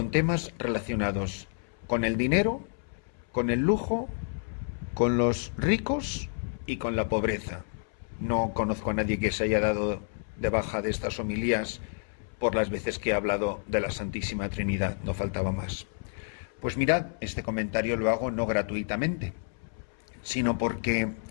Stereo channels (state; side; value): silent; right; 58 dB below the other